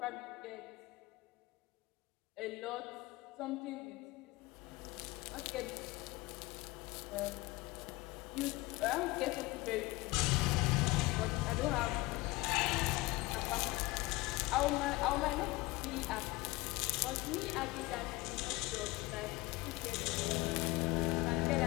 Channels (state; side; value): quieter; right; 21.8 dB